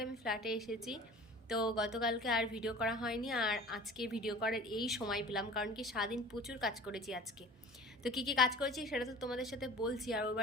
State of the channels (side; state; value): both; normal; correlation 0.42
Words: আমি ফ্ল্যাটে এসেছি, তো গতকালকে আর ভিডিও করা হয়নি, আর আজকে ভিডিও করার এই সময় পেলাম, কারণ কি সারাদিন প্রচুর কাজ করেছি আজকে। তো কী কী কাজ করেছি সেটা তো তোমাদের সাথে বলছি। আর ওর